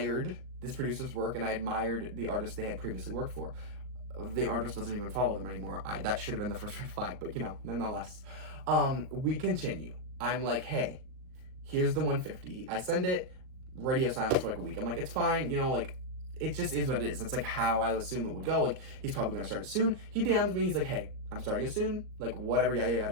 this producer's work and I admired the artist they had previously worked for. The artist doesn't even follow them anymore. That should have been the first red flag, but nonetheless. We continue. I'm like, hey, here's the 150. I send it. Radio silence for like a week. I'm like, it's fine, like it just is what it is. That's like how I assume it would go. Like he's probably gonna start it soon. He DMs me, he's like, hey, I'm starting it soon, like whatever, yada yada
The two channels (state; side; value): late; left; 38 ms